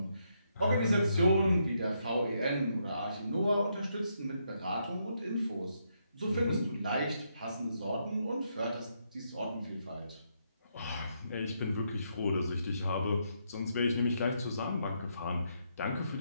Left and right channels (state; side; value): inverted; both; correlation -0.78